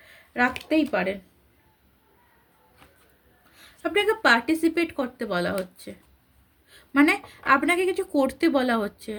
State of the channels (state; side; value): identical; both; correlation 1.00